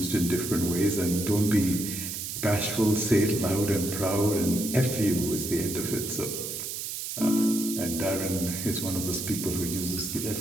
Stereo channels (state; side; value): noise; right; hiss, 5 dB below the sound